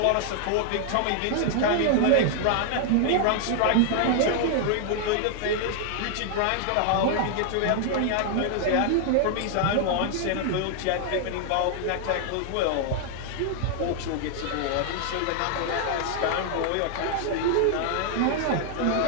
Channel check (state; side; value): different; both; correlation 0.00